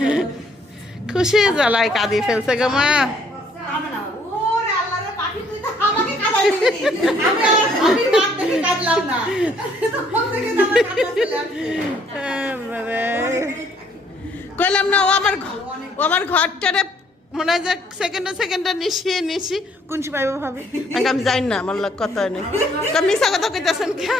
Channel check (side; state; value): both; normal; correlation 0.64